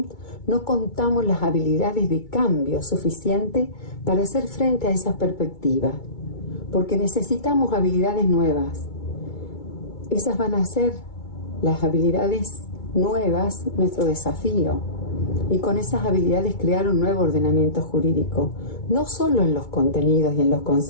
no contamos las habilidades de cambio suficientes para hacer frente a esas perspectivas? Porque necesitamos habilidades nuevas. Esas van a ser las habilidades nuevas, nuestro desafío. Y con esas habilidades crear un nuevo ordenamiento jurídico, no solo en los contenidos y en los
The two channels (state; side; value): late; right; 2.3 ms